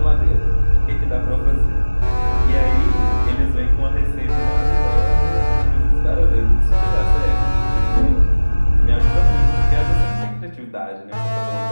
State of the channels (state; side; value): inverted; both; correlation -1.00